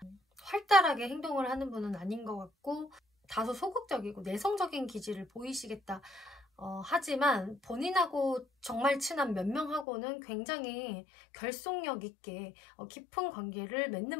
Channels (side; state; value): right; drops out; at 9.9 s